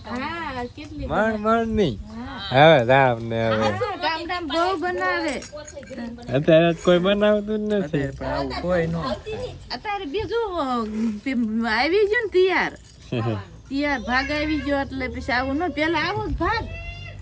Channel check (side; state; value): both; identical; correlation 1.00